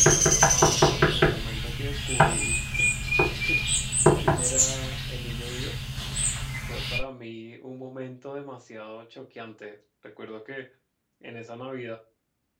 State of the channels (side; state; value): both; identical; correlation 1.00